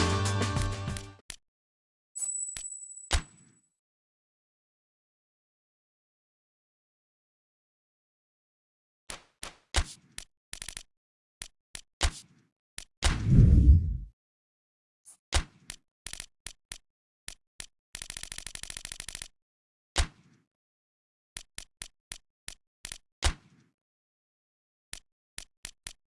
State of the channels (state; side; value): identical; both; correlation 1.00